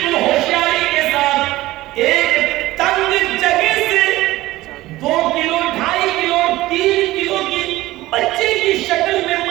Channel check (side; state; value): left; quieter; 17.2 dB